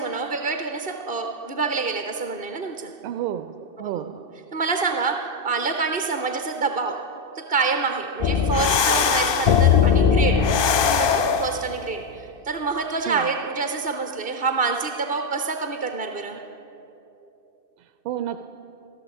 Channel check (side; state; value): left; late; 2.6 ms